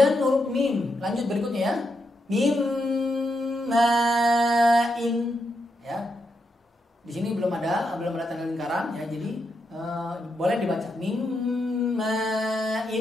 huruf mim, lanjut berikutnya, ya. Mim ma'in, ya. Di sini belum ada tanda lingkaran, ya. Jadi boleh dibaca mim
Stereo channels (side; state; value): both; normal; correlation 0.83